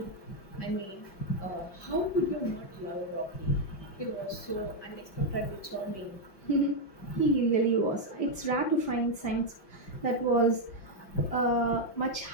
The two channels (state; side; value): late; right; 5.8 ms